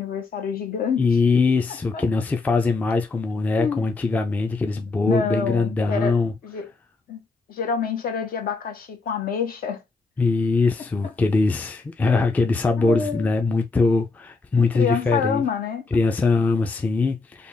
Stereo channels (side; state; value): right; quieter; 3.9 dB